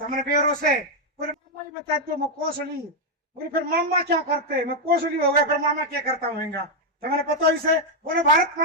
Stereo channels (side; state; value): both; normal; correlation 0.00